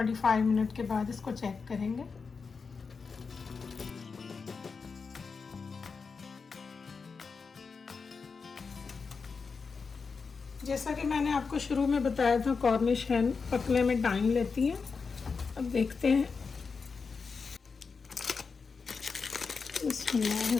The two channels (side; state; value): right; quieter; 5.0 dB